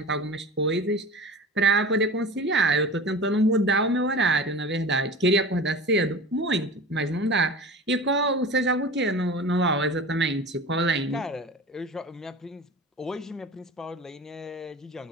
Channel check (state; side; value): normal; both; correlation 0.34